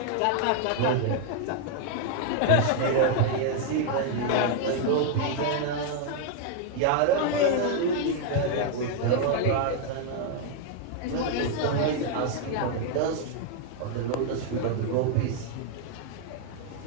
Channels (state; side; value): different; both; correlation 0.00